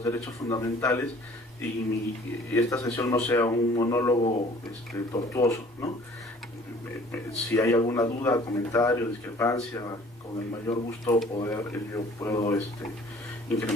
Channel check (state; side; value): normal; both; correlation 0.52